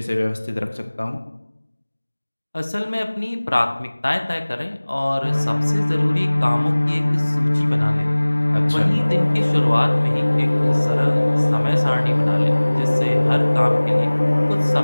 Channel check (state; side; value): inverted; both; correlation -1.00